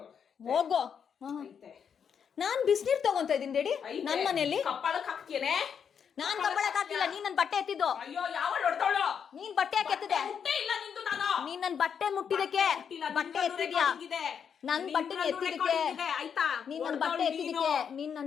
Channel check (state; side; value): quieter; right; 7.3 dB